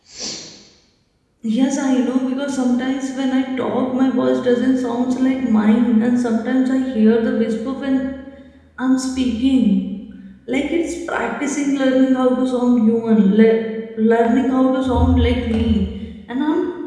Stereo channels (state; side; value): identical; both; correlation 1.00